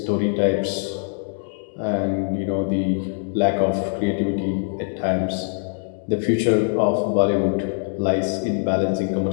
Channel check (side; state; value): right; silent; digital silence